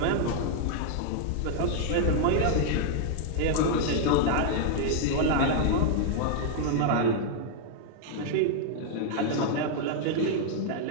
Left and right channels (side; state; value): both; different; correlation 0.00